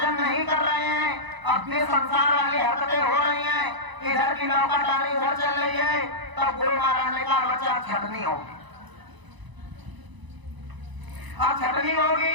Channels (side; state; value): left; late; 1.0 ms